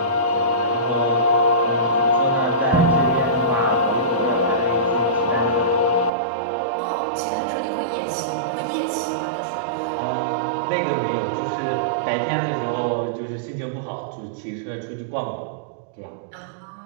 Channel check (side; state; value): left; drops out; at 6.1 s